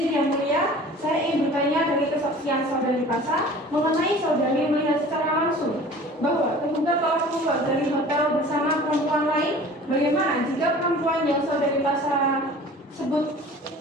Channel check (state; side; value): normal; both; correlation 0.44